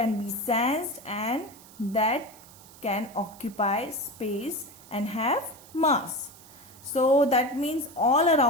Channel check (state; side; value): noise; right; hiss, 22 dB below the sound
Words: be sensed and that can occupy space and have mass. So that means all